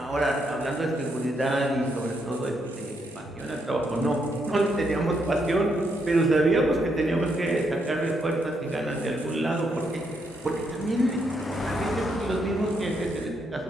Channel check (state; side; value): normal; both; correlation 0.77